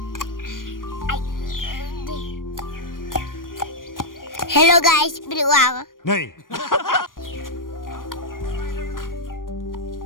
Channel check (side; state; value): right; late; 0.90 ms